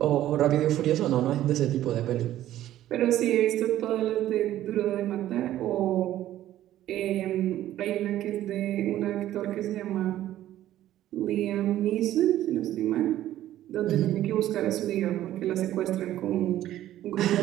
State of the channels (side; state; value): left; quieter; 13.2 dB